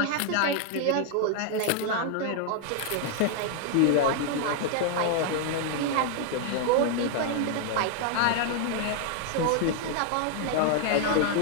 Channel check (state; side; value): different; both; correlation 0.00